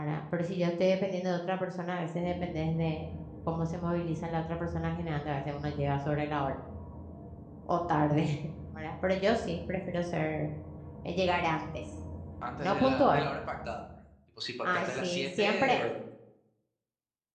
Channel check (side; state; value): both; identical; correlation 1.00